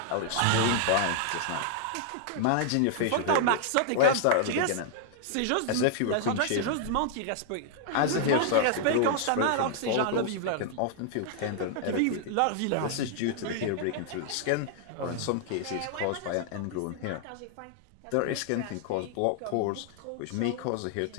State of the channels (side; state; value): both; different; correlation 0.00